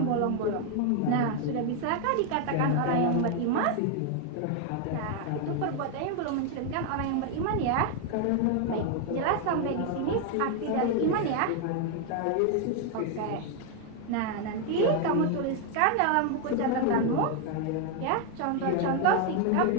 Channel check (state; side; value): different; both; correlation 0.01